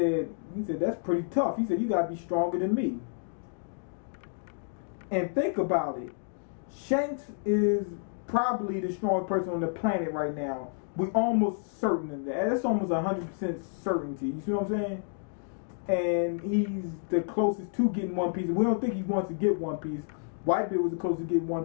"That's pretty tough." He said, "You gotta be stronger than me." And think about it. Shanks is probably the strongest person on the planet right now. We're almost certain of that. That's almost 100% certainty. You see what I'm saying? And he's the closest to getting One Piece. We don't think he wants to get One Piece. Whitebeard was the closest to getting One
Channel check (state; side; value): silent; right; digital silence